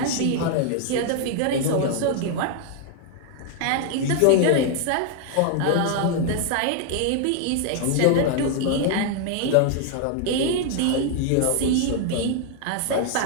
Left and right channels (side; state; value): both; different; correlation 0.00